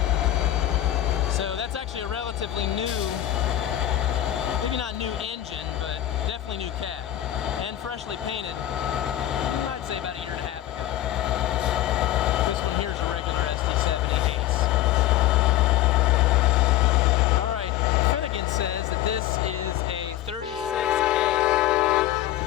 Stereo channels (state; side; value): quieter; right; 13.2 dB